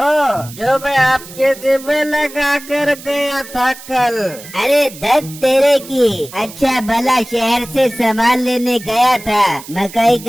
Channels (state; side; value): noise; right; hiss, 16 dB below the sound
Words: जो मैं आपके जिम में लगा कर गया था कल। अरे धत तेरे की, अच्छा भला शहर से सामान लेने गया था, मकई